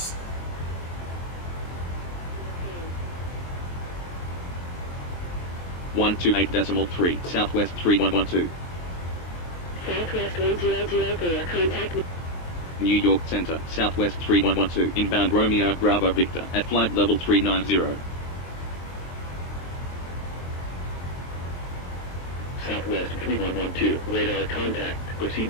One 28.3, Southwest 3112. Southwest 1004, contact New York Center, Southwest 3112, inbound Romeo, Bravo Victor, at flight level 390. Southwest 3112, radar contact.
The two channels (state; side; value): late; right; 23 ms